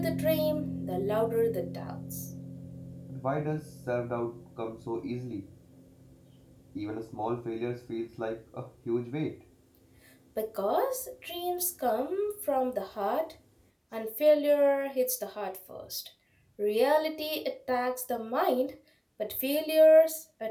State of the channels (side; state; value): both; identical; correlation 1.00